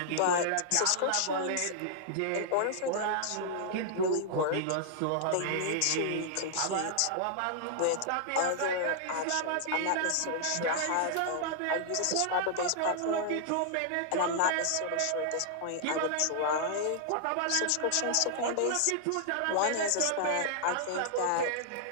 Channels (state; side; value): different; both; correlation -0.01